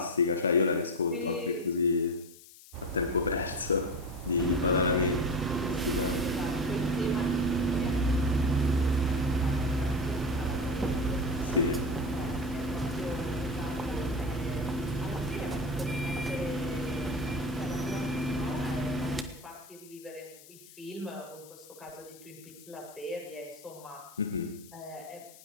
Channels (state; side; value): noise; left; hiss, 20 dB below the sound